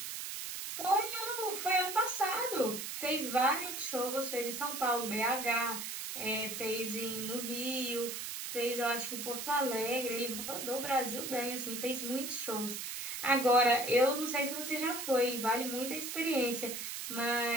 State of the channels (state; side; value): noise; right; hiss, 5 dB below the sound